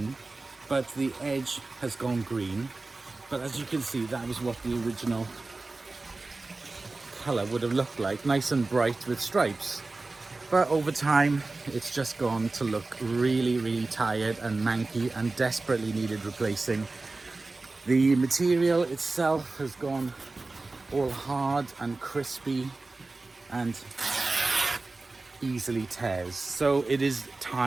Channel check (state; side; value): quieter; left; 3.4 dB